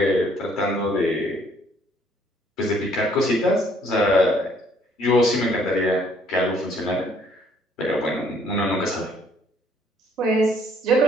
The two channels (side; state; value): both; normal; correlation 0.63